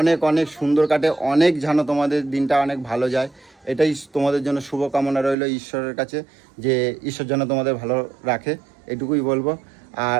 অনেক সুন্দর কাটে অনেক যেন তোমাদের দিনটা অনেক ভালো যায় এটাই তোমাদের জন্য শুভকামনা রইল ঈশ্বরের কাছে যে ঈশ্বর যেন তোমাদের ভালো রাখে এটুকুই বলবো আর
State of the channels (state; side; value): drops out; left; at 5.4 s